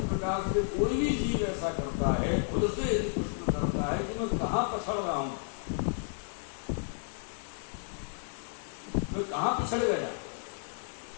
प्रकार से कोई भी जीव ऐसा करता है, खुद से यदि प्रश्न करता है कि मैं कहाँ पछड़ रहा हूं, बिछड़ गया।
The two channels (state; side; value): silent; right; digital silence